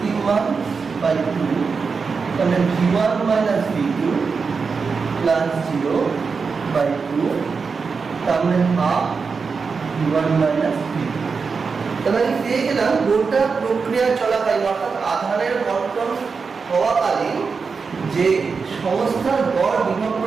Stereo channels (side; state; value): left; quieter; 5.1 dB